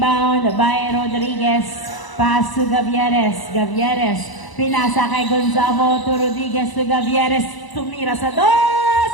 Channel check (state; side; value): late; right; 1.0 ms